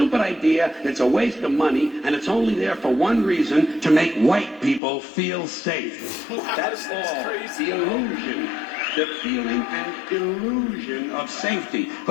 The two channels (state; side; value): drops out; right; at 4.8 s